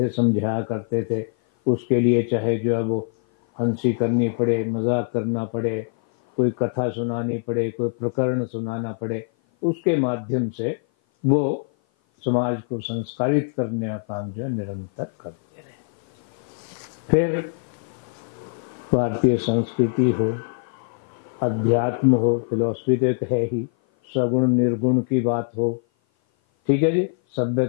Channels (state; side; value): silent; right; 56 dB below the other